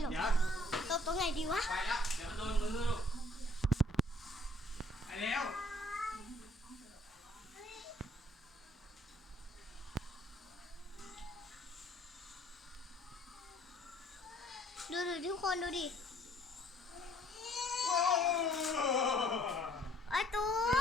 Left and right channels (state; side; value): normal; both; correlation 0.60